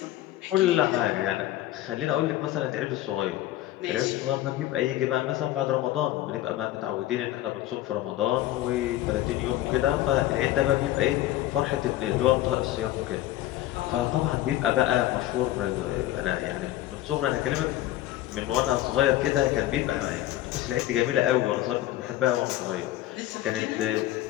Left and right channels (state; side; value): quieter; right; 14.7 dB